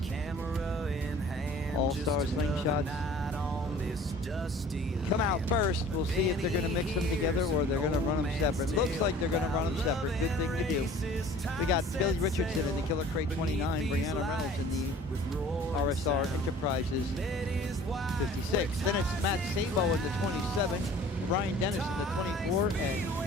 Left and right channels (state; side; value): normal; both; correlation 0.48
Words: All Star Slingshots come out first. We'll see if they're going to mix them together or they're going to run them separate. Looks like they're going to run them separate. Good thing to do. We got Billy Richardson in the Killer Crate 29, Brianna Reynolds in the RSR Enterprises 56. Then it's Matt Sabo in the 27, Ryan Dennis in the 24, and